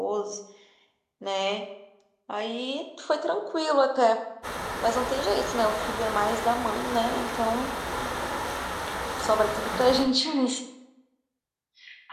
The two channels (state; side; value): identical; both; correlation 1.00